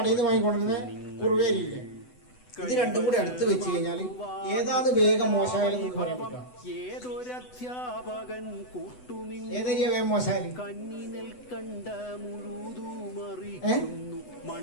ഇത് രണ്ടും കൂടി അടുത്ത് വെച്ച് കഴിഞ്ഞാൽ ഏതാണ് വേഗം മോശമായാലും ഏതൊരധ്യാപകൻ ഏതൊരു വേഗം മോശമായാലും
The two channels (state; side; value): late; right; 8.0 ms